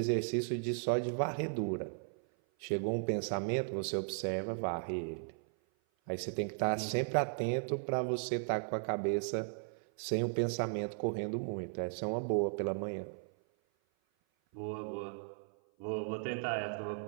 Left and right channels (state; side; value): silent; left; 54 dB below the other